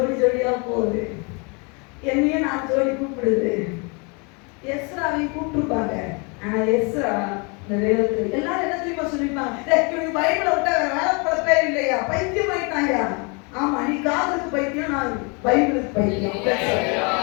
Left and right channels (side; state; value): right; quieter; 32.3 dB